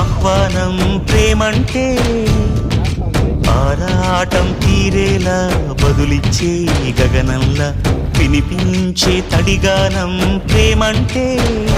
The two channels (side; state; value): both; identical; correlation 1.00